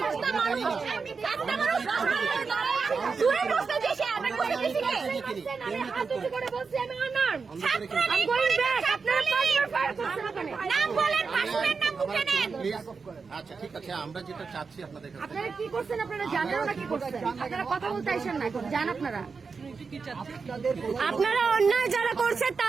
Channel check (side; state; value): left; quieter; 5.0 dB